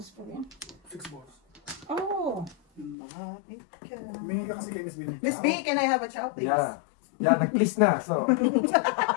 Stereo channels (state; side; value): drops out; right; at 3.0 s